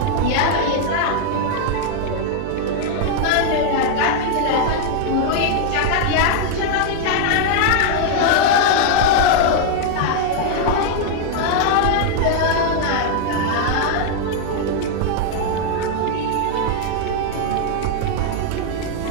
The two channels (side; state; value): both; different; correlation 0.00